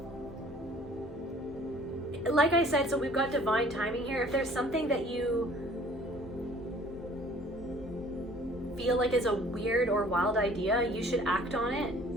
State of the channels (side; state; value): both; normal; correlation 0.53